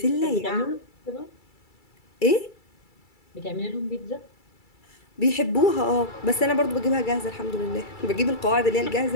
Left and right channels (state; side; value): late; right; 2.3 ms